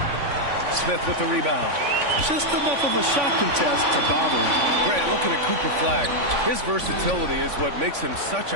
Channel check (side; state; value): left; late; 3.5 ms